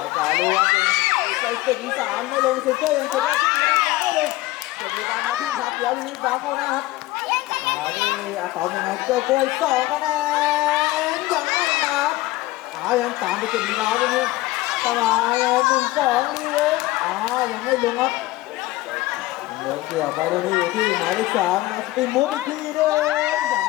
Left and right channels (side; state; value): right; quieter; 18.2 dB